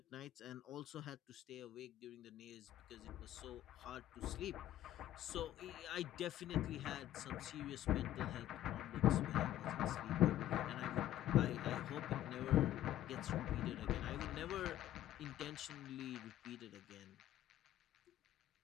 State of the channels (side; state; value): right; quieter; 13.2 dB